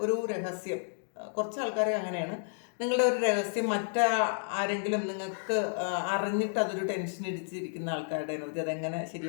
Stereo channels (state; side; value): silent; right; digital silence